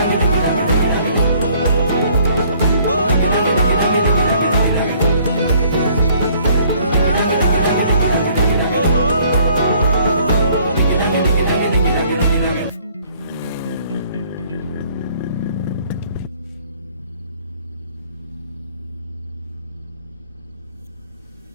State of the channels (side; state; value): both; inverted; correlation -0.60